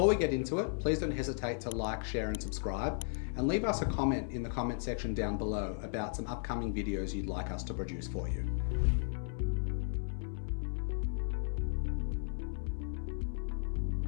we get into it, please don't hesitate to like, share and subscribe, and leave us a comment in the comment section down below about some upcoming videos you'd like us to produce for you.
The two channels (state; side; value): silent; right; 54 dB below the other